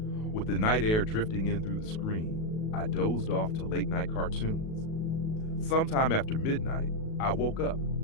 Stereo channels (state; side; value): late; right; 37 ms